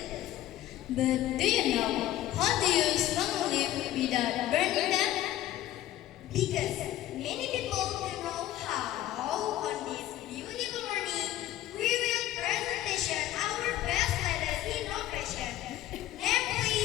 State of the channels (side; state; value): right; quieter; 13.7 dB